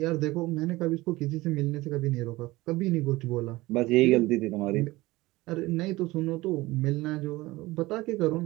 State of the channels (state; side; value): quieter; left; 19.7 dB